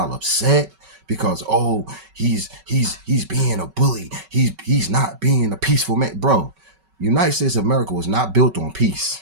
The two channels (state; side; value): late; left; 5.3 ms